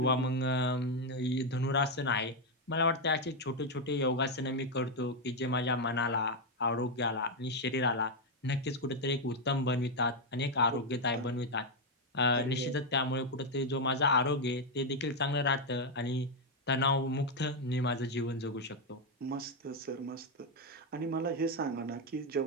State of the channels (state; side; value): normal; both; correlation 0.03